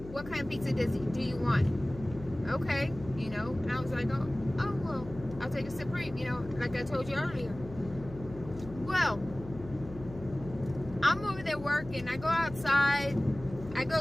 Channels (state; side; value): noise; left; hum, 14 dB below the sound